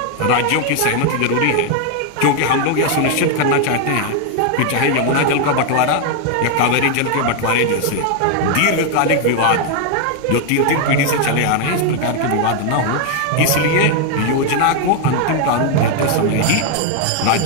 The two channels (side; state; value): both; different; correlation 0.01